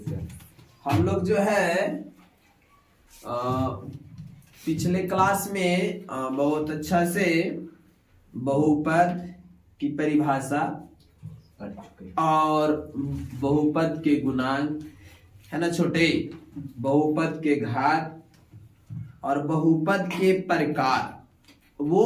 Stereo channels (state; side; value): identical; both; correlation 1.00